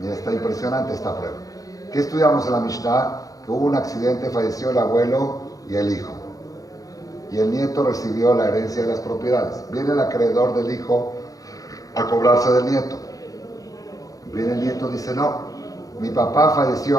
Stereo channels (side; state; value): right; late; 0.17 ms